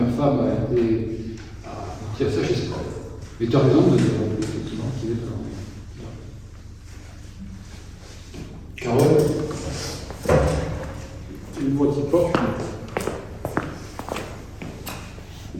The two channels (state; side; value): identical; both; correlation 1.00